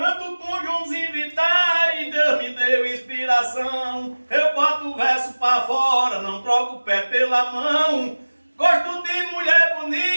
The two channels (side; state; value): both; inverted; correlation -1.00